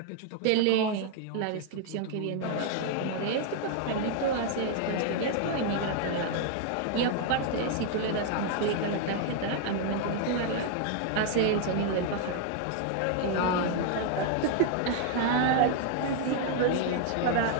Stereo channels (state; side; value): different; both; correlation 0.00